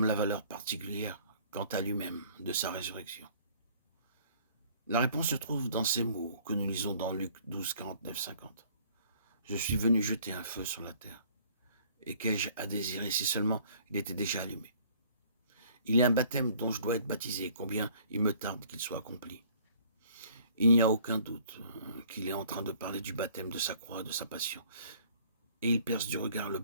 la valeur particulière quant à lui-même de sa résurrection? La réponse se trouve dans ces mots que nous lisons dans Luc 12, 49, 50. Je suis venu jeter un feu sur la terre. Et qu'ai-je à désirer si seulement il était déjà allumé? Il y a un baptême dont je dois être baptisé, combien il me tarde qu'il soit accompli. Il n'y a aucun doute qu'il est en train de parler du baptême de sa croix, de sa passion. Et il perce du regard le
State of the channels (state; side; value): inverted; both; correlation -0.56